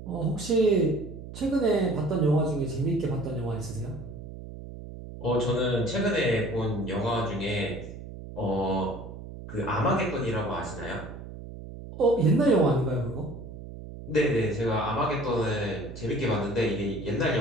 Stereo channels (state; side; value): noise; right; hum, 12 dB below the sound